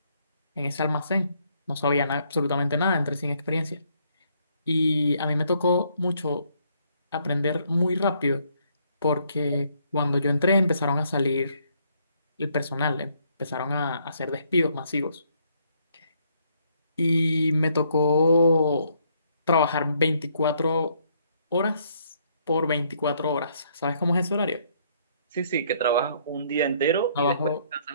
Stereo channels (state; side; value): inverted; both; correlation -0.69